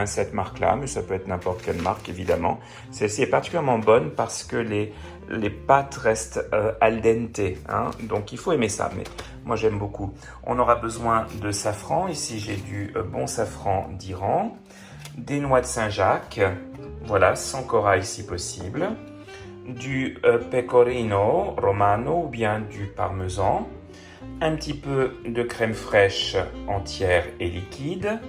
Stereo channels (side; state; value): both; identical; correlation 1.00